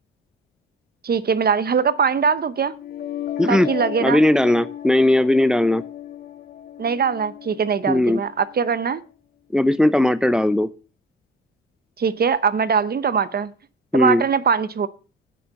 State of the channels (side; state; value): both; normal; correlation 0.48